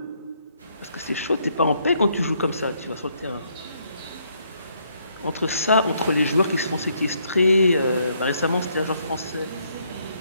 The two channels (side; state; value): both; inverted; correlation -0.71